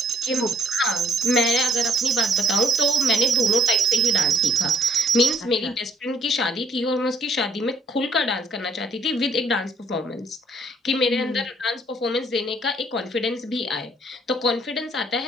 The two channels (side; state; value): both; normal; correlation 0.64